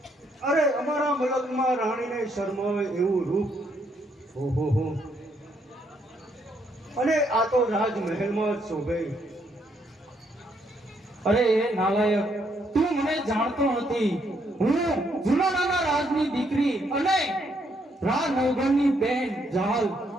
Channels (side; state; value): both; normal; correlation 0.73